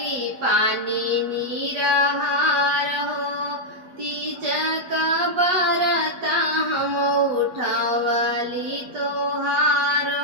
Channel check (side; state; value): left; late; 8.2 ms